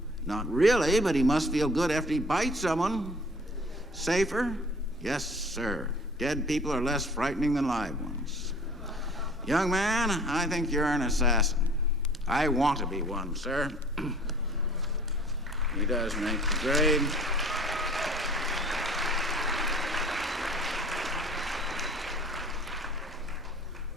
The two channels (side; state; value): both; normal; correlation 0.50